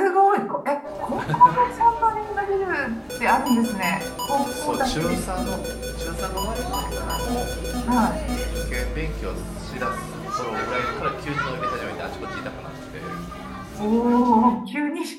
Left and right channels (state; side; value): identical; both; correlation 1.00